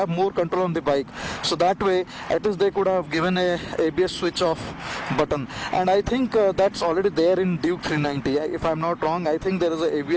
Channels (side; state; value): both; identical; correlation 1.00